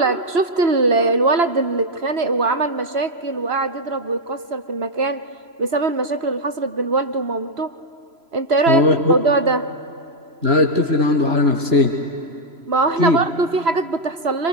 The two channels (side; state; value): left; late; 3.0 ms